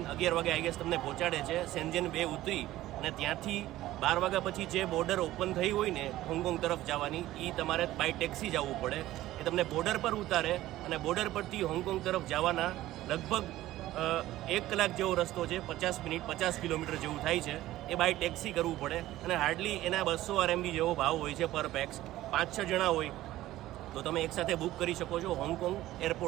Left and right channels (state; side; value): quieter; left; 15.3 dB